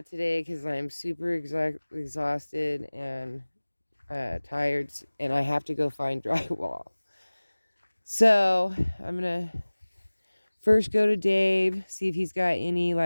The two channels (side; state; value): both; inverted; correlation -1.00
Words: today because I'm super exhausted and tired, and I have to go find drywall. So I'm going to first go to Dave, see if he's got any